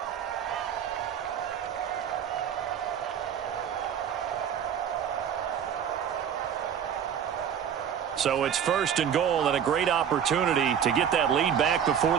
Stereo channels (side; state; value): left; quieter; 8.5 dB